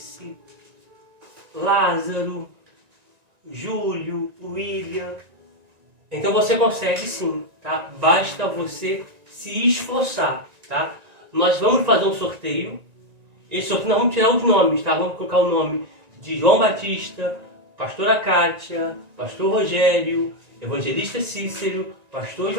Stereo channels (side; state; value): left; late; 1.9 ms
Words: Lázaro, Júlio, William. Então você consegue sim, tá? Basta você se esforçar, tá? Nós vamos fazer um sorteio. Esse sorteio nós vamos tirar os nomes, tá? Vamos colocar o nome de João Batista, pastora Kátia, pastor Rogério, evangelista Cícero, pastor